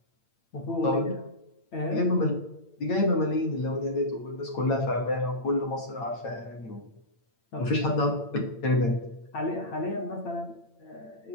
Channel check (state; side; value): late; right; 8.8 ms